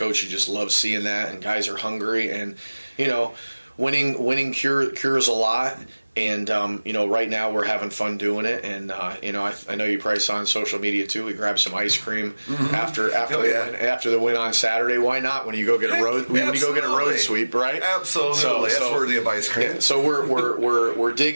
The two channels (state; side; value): inverted; both; correlation -1.00